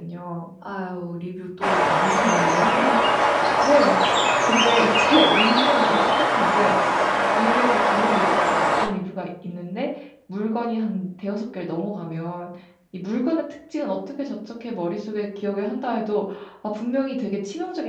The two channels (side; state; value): both; identical; correlation 1.00